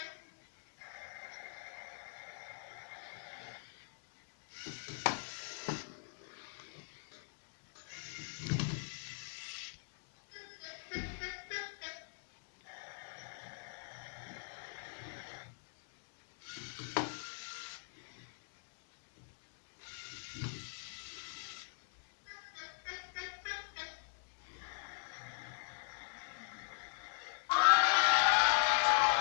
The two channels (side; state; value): right; silent; digital silence